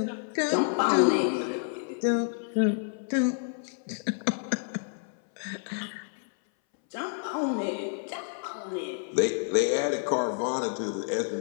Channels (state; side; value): silent; right; 59 dB below the other